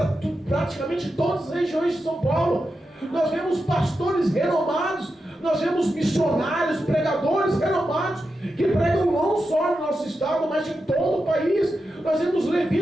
praticamente todas as regiões de São Paulo. Nós vemos pastores renomados. Nós vemos missionários, pregadores renomados, que pregam não só no nosso estado, mas em todo o país. Nós vemos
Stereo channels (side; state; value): both; normal; correlation 0.89